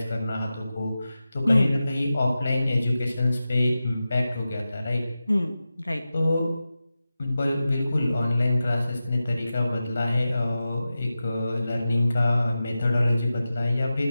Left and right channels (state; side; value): inverted; both; correlation -0.93